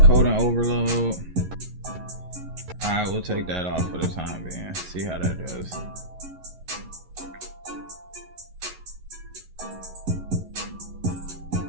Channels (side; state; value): left; late; 11 ms